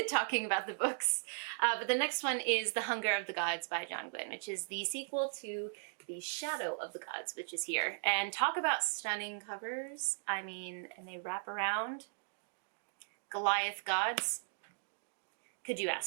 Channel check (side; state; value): left; silent; digital silence